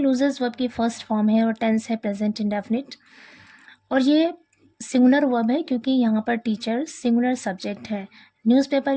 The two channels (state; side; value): identical; both; correlation 1.00